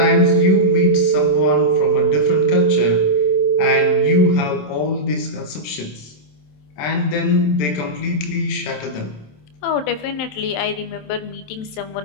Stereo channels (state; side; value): late; right; 27 ms